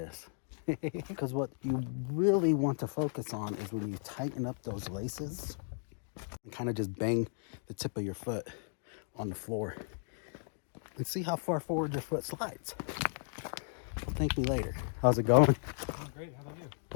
Because what you really want to focus on is when you tighten up those laces and kind of just bang the tip of your foot on the floor and see how far forward your foot slides. Thank me later. How's it going? Oh, great. How about you?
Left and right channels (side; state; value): right; silent; 54 dB below the other